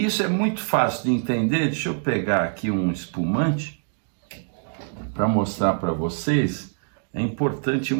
isso é muito fácil de entender. Deixa eu pegar aqui um espumante para mostrar para vocês. É importante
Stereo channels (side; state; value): left; silent; digital silence